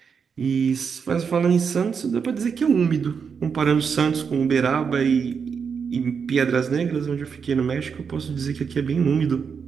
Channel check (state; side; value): quieter; left; 6.3 dB